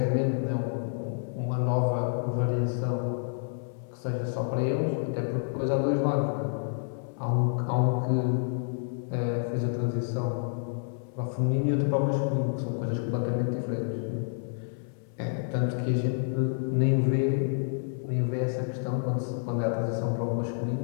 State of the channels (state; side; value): silent; right; 59 dB below the other